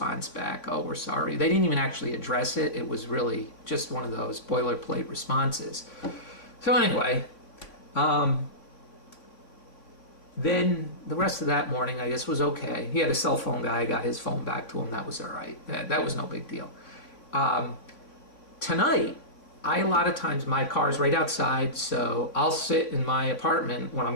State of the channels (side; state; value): right; late; 3.5 ms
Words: back. Oh, we're sorry. They didn't even actually address it. It was really just one of those boilerplate responses. So anyway, Then the rest of that morning, I guess, was okay. He had a cell phone guy. I got his phone back to him. That was all right. That was no big deal. Tonight, a lot of times my car's right outside, so I'll sit in my apartment when